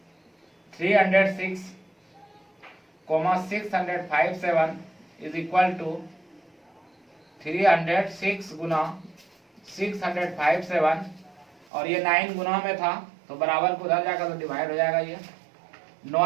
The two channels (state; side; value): drops out; left; at 11.7 s